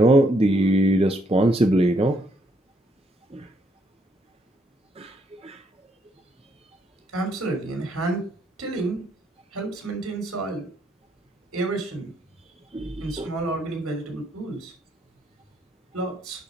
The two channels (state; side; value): normal; both; correlation 0.73